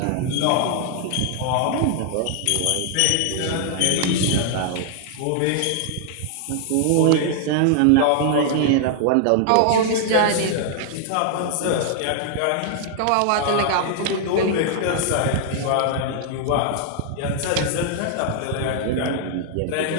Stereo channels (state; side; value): different; both; correlation 0.00